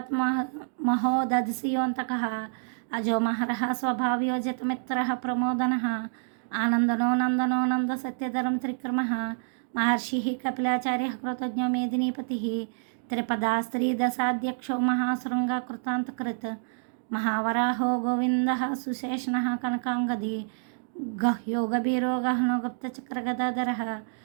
महोदधिसियोऽन्तकः अजो महरः स्वभाव्यो जितमित्रः प्रमोदनः आनन्दनो नन्दनो नन्दसत्यधरं त्रिक्रमः महर्षिः कपिलाचार्यः कृतज्ञो मेदिनीपतिः त्रिपदा स्त्रीदशाध्यक्षो महाशृङ्गकृतान्तकृत् महावराहो गोविन्दः सुशेषणः कनकाङ्गदी गह्यो गभीरो गहनो गुप्तचक्रगदाधरः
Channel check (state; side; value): silent; left; digital silence